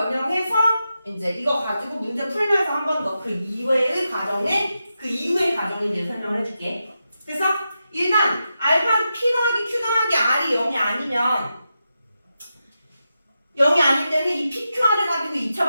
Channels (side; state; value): both; inverted; correlation -0.88